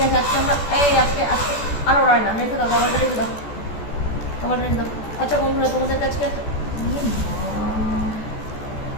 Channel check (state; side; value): late; right; 14 ms